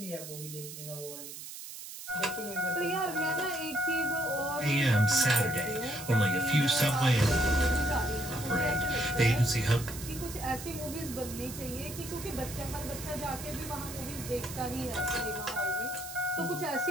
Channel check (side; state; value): right; noise; hiss, 11 dB below the sound